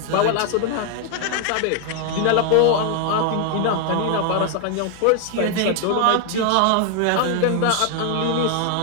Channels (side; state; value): both; different; correlation 0.00